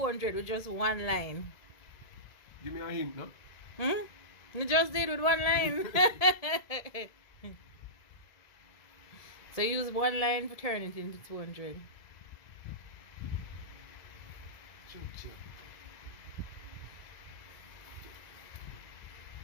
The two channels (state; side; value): late; right; 2.0 ms